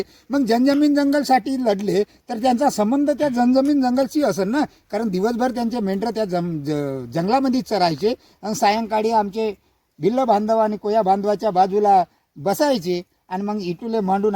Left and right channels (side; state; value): both; identical; correlation 1.00